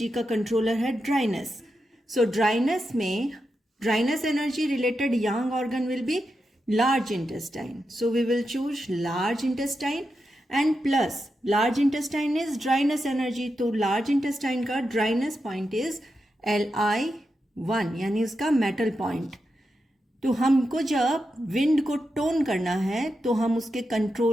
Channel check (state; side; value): normal; both; correlation 0.88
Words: का कंट्रोलर है dryness. So dryness energy related yang organ will be large intestine. So we will choose large intestine and plus large intestine is dryness energy. तो large intestine का dryness point is Li1, यानी उसका metal point। तो हमको जब wind को टोन करना है तो हम उसके